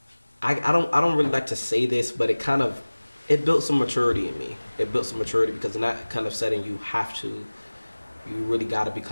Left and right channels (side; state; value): both; inverted; correlation -1.00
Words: I don't really like to say this, but it built some maturity in me. It built some maturity because in that kind of setting, you really got to